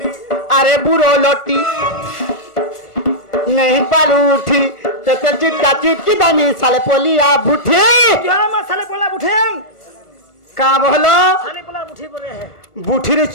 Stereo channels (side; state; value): right; late; 1.4 ms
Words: अरे बुरो लोटी नहीं पालू उठी तो चिटका चिटकी दानी साले पोलिया बुठे क्या मसाले पोला बुठेम का बोलो साले पोला बुठी बोले है बुठीर